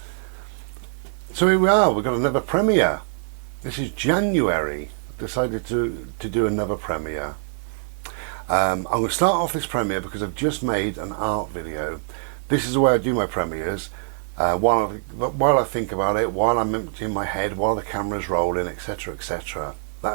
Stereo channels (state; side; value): silent; left; digital silence